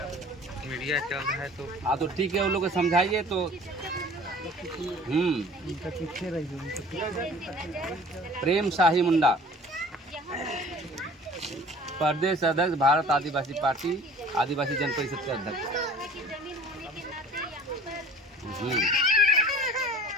मीडिया चल रहा है तो। हाँ तो ठीक है, वो लोग को समझाइए तो। प्रेम शाही मुंडा, प्रदेश अध्यक्ष भारत आदिवासी पार्टी, आदिवासी जन परिषद के अध्यक्ष।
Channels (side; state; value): both; normal; correlation 0.47